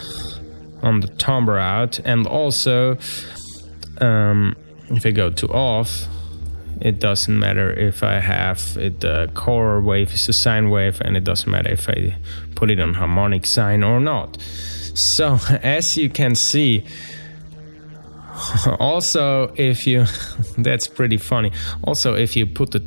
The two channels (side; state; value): both; inverted; correlation -1.00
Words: on the timbre out. And also if I go to off, it doesn't matter if I have it, the core wave is a sine wave, and it doesn't matter if I put it on harmonic sine or not. So as you can see, also if you that's pretty funny, also if you put the